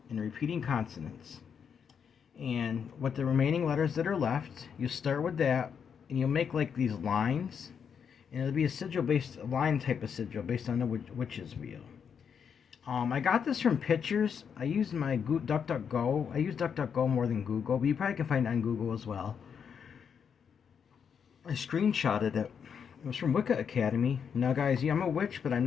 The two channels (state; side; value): quieter; right; 7.1 dB